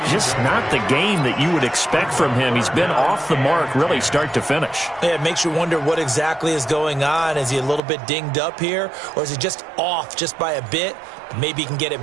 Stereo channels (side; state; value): left; drops out; at 7.8 s